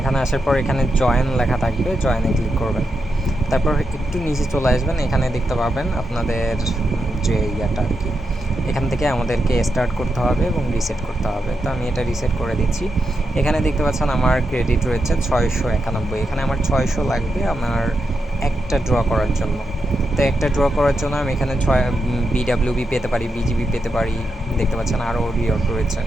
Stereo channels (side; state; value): both; normal; correlation 0.86